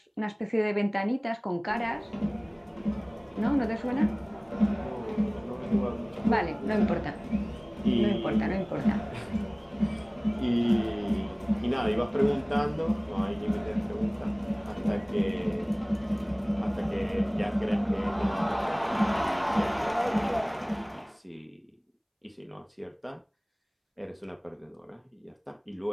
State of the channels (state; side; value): identical; both; correlation 1.00